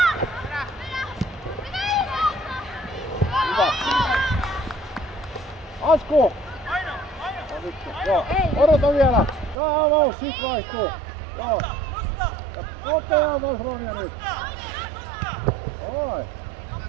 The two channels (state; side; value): drops out; left; at 9.6 s